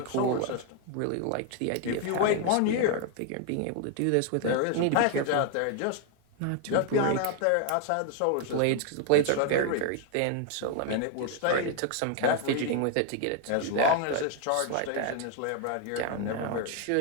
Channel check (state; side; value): different; both; correlation 0.00